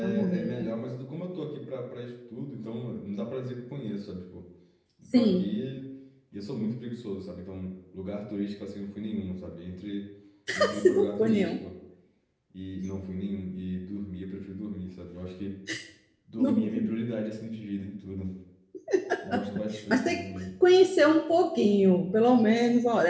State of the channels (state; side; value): identical; both; correlation 1.00